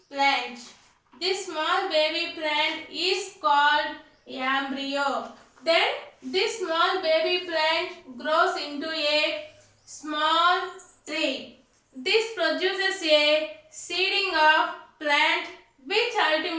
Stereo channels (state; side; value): identical; both; correlation 1.00